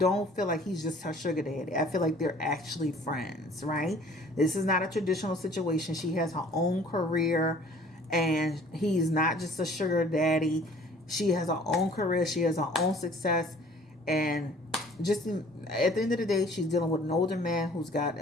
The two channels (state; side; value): normal; both; correlation 0.53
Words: feel like he's just her sugar daddy. I feel like they're actually friends, right? This is not a traditional situation. She has her own career, and he's not just a sugar daddy. She has her own career. She has her own success, and just at the end of the day, she's dealing with an older man who's